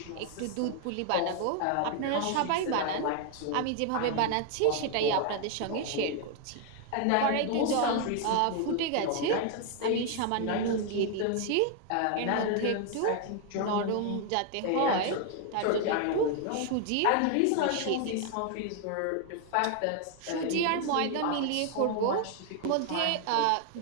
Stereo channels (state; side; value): different; both; correlation 0.00